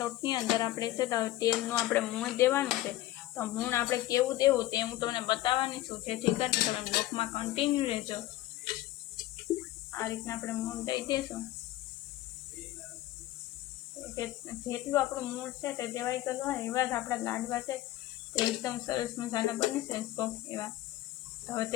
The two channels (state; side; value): quieter; right; 15.5 dB